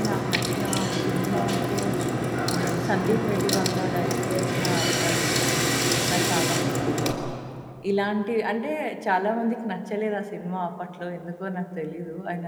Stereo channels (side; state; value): both; identical; correlation 1.00